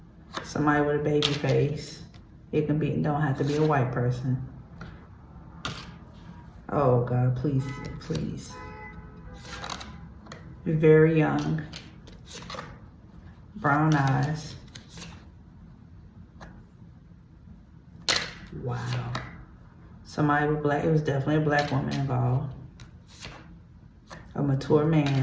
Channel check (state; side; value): identical; both; correlation 1.00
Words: Somebody with a baby face. It can be, don't have to be a white person. Oh God, please, please. Very young. Brown eyes. Wow. Somebody with black, it was definitely a black woman involved. A mature